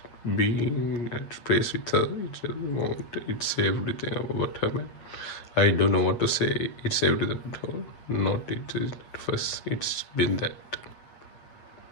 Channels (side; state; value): right; late; 8.4 ms